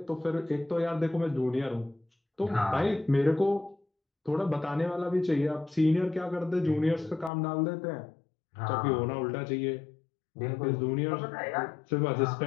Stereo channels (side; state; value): right; drops out; at 7.3 s